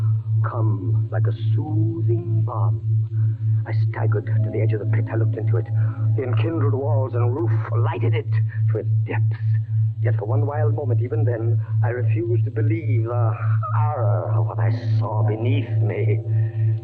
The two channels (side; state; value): both; identical; correlation 1.00